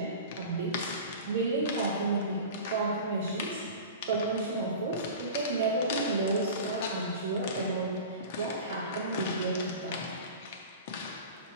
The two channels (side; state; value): both; inverted; correlation -0.35